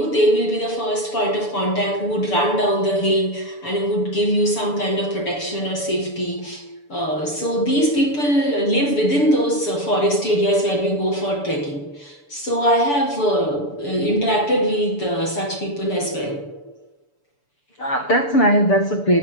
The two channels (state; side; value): late; right; 6.9 ms